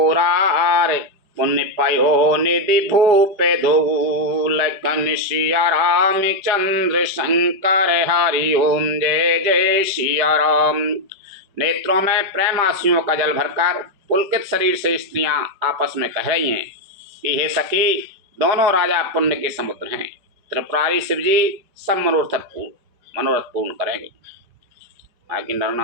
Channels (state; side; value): late; left; 5.2 ms